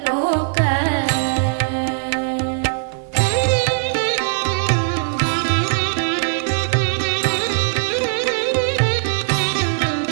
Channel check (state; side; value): silent; left; digital silence